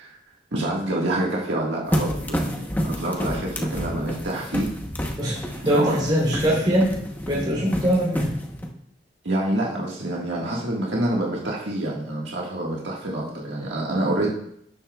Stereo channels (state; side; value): normal; both; correlation 0.62